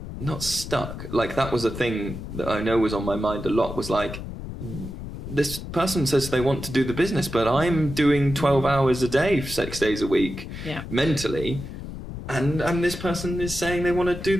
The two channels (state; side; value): noise; left; rumble, 9 dB below the sound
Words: not stuck. Like, that was a thing that I know was on my mind a lot, was like, this person says they want to do the business, but I'm doing 12 hours a day, 6 days a week, mentally. And this person is saying they want to do